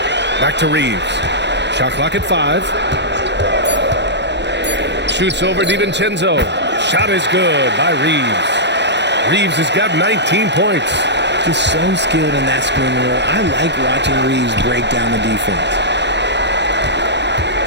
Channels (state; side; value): late; left; 0.51 ms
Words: Back to Reeves. Shot clock at 5. Shoots over DiVincenzo. Shot is good by Reeves. Reeves has got 19 points. Just so skilled in that screen roll. I like watching Reeves break down the defense.